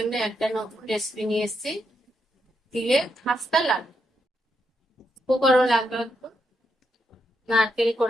একটা নতুন রেসিপি নিয়ে এসেছি। তিলের খাস্তা লাগবে, উপকরণ লাগবে নারকেল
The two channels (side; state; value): both; normal; correlation 0.82